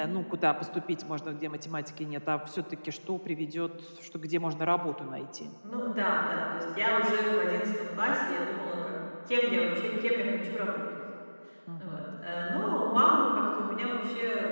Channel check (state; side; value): inverted; both; correlation -1.00